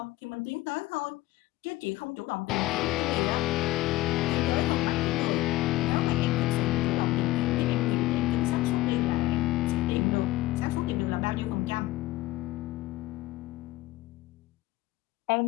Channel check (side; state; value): right; quieter; 17.7 dB